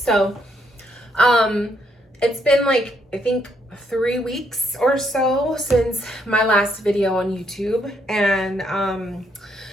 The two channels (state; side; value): normal; both; correlation 0.73